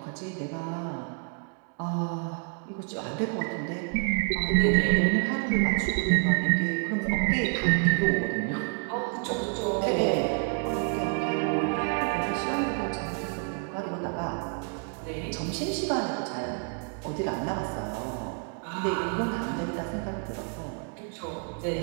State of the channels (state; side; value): quieter; left; 39.8 dB